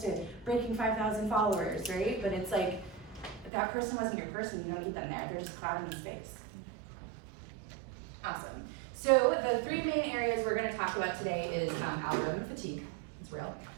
to breaking 5,000 followers, right? But it's like, if that person wasn't your person, you don't need them there. They're just clouding the space. Awesome. So the three main areas we're gonna talk about today is algorithm fatigue, it's real.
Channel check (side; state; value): left; drops out; at 3.5 s